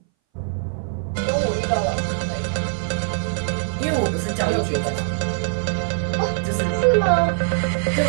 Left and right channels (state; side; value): silent; left; 60 dB below the other